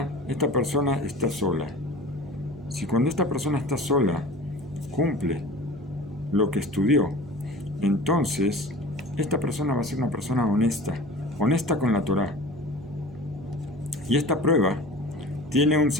esta persona está sola. Si cuando esta persona está sola, cumple lo que estudió, entonces esta persona va a ser una persona honesta con la Torah. Y esta prueba tiene un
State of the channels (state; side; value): normal; both; correlation 0.39